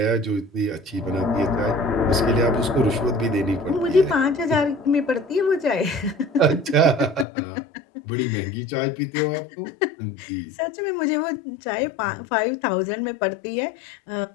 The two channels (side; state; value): right; drops out; at 7.2 s